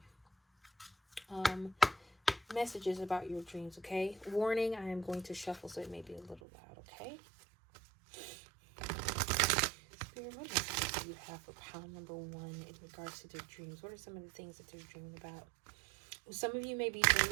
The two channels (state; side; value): drops out; left; at 6.4 s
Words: messages about your dreams, okay? Warning, I am going to shuffle, so it may be a little loud, okay? Spirit, what messages do you have for pile number 1 in regards to their dreams? What are some of the things that they're dreaming about? Some of you may be